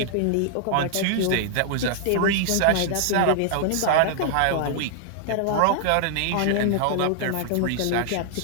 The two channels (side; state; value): both; different; correlation 0.00